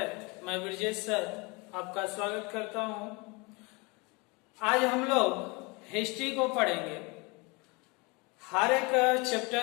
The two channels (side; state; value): right; quieter; 27.6 dB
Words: मैं ब्रजेश सर आपका स्वागत करता हूं। आज हम लोग हिस्ट्री को पढ़ेंगे। हर एक